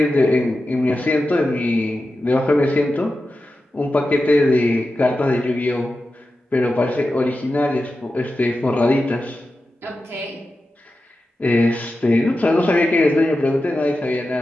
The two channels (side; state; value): both; normal; correlation 0.92